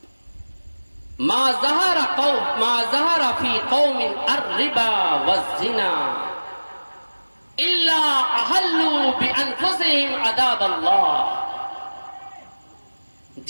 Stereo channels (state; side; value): inverted; both; correlation -1.00